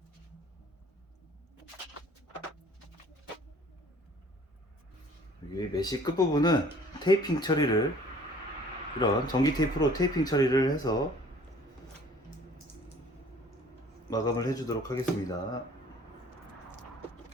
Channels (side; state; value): both; normal; correlation 0.52